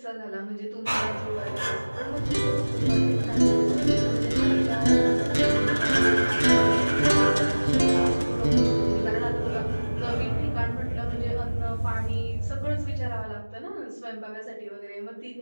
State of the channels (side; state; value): both; inverted; correlation -1.00